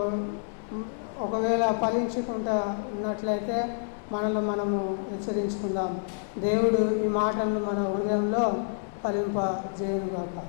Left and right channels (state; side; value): silent; right; 59 dB below the other